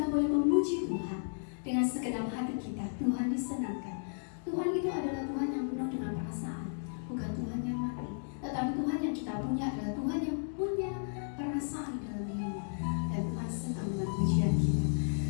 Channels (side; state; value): right; silent; digital silence